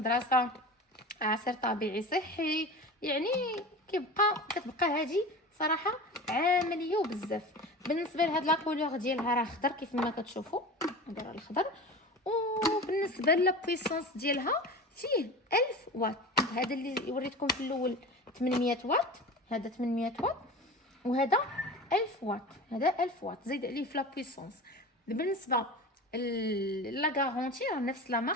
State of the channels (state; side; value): normal; both; correlation 0.33